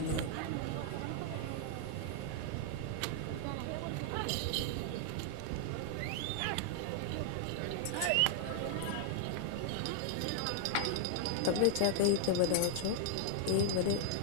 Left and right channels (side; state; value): both; different; correlation 0.00